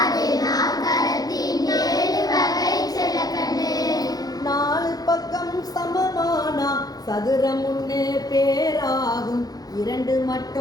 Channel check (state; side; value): late; right; 0.19 ms